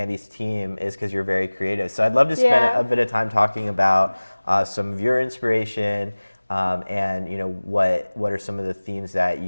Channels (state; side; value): inverted; both; correlation -1.00